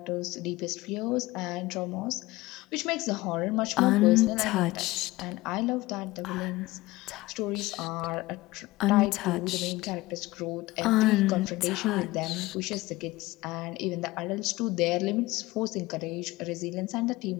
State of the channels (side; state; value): right; quieter; 19.6 dB